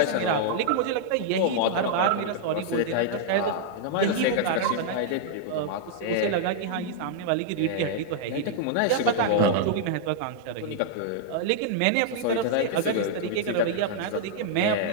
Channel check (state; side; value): different; both; correlation -0.01